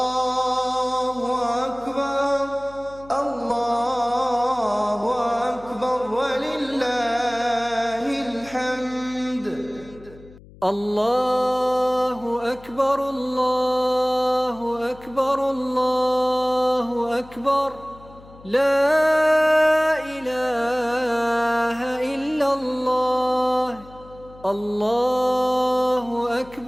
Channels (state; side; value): noise; left; hum, 22 dB below the sound